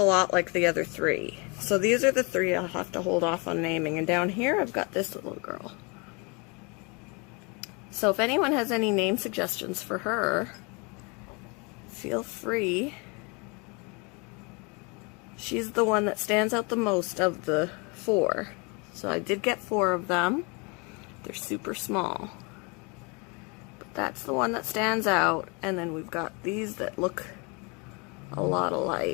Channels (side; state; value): right; quieter; 30.6 dB